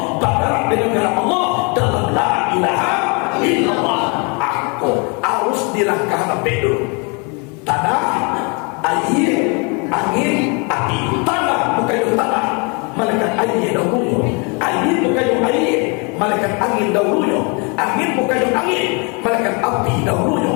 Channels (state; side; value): quieter; right; 32.7 dB